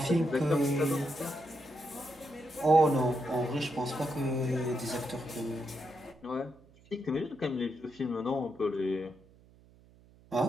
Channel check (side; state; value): right; noise; hum, 27 dB below the sound